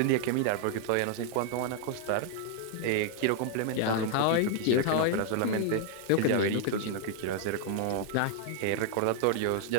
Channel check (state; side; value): different; both; correlation 0.00